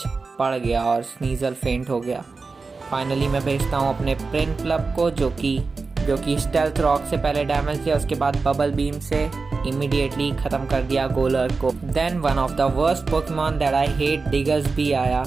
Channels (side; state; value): left; quieter; 4.2 dB